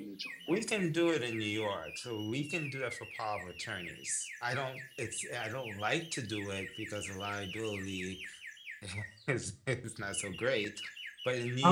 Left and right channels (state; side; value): identical; both; correlation 1.00